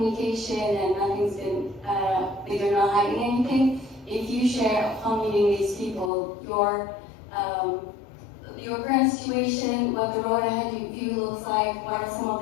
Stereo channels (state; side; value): drops out; right; at 6.1 s